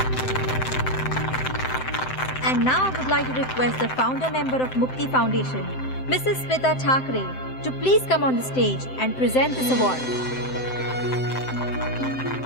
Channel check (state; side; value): late; right; 7.8 ms